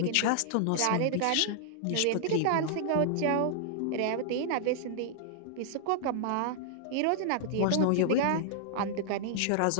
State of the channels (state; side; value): different; both; correlation -0.01